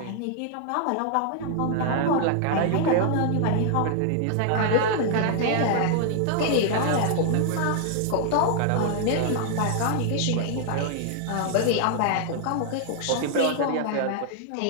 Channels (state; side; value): different; both; correlation 0.00